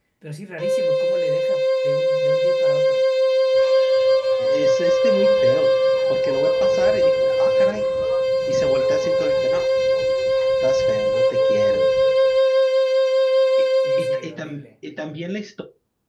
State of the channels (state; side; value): identical; both; correlation 1.00